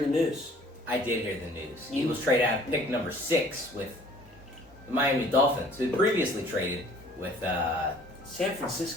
the news. I did hear the news. Eagles trade out pick number 6 with the Miami Dolphins, who previously traded with San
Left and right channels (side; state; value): both; normal; correlation 0.53